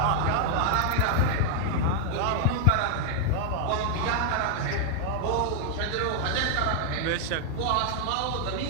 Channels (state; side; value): different; both; correlation 0.00